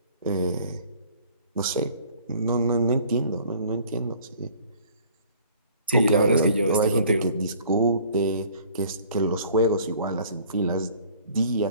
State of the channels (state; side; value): inverted; both; correlation -0.53